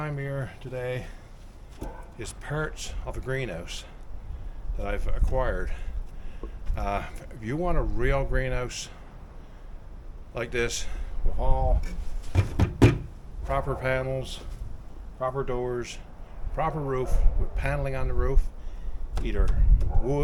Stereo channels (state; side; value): identical; both; correlation 1.00